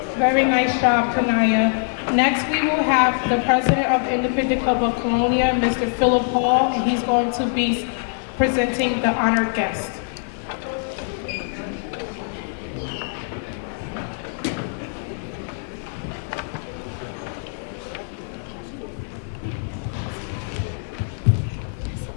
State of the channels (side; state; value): right; silent; 57 dB below the other